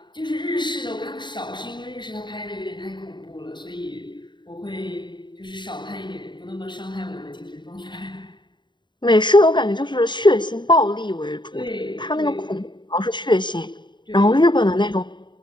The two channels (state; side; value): late; right; 0.22 ms